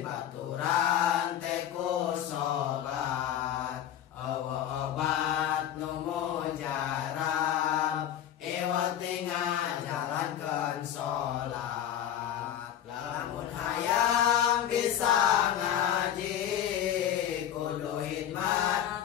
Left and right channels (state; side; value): quieter; right; 10.6 dB